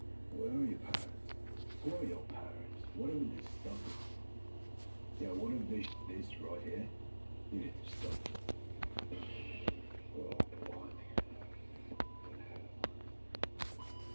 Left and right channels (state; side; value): inverted; both; correlation -1.00